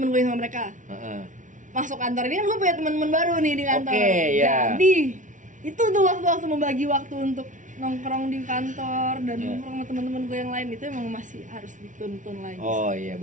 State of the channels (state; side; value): late; left; 0.37 ms